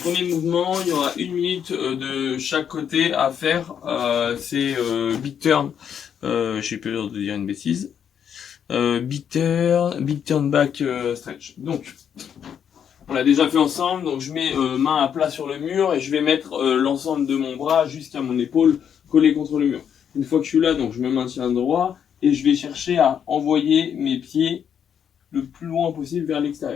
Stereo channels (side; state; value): right; quieter; 8.3 dB